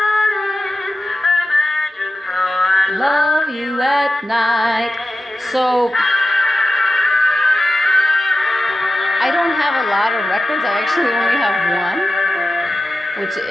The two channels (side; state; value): both; normal; correlation 0.93